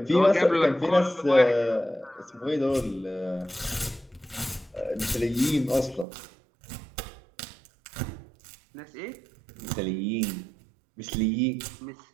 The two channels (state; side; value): drops out; left; at 6.1 s